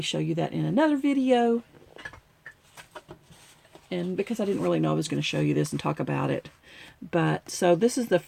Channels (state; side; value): identical; both; correlation 1.00